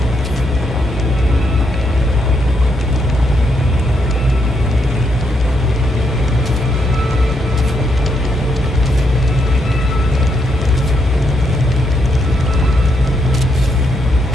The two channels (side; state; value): both; normal; correlation 0.77